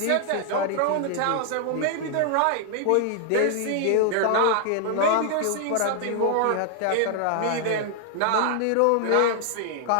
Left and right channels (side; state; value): both; different; correlation 0.00